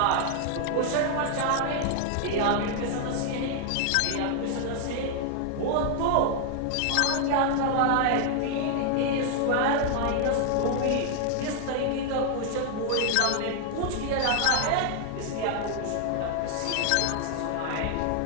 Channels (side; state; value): both; different; correlation 0.00